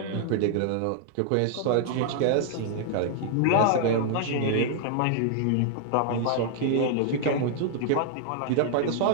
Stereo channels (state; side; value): different; both; correlation 0.00